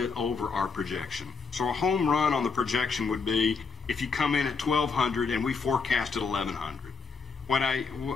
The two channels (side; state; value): right; quieter; 4.8 dB